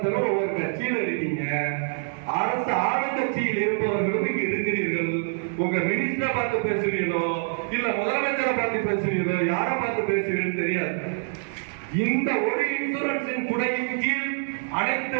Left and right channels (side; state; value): left; silent; 61 dB below the other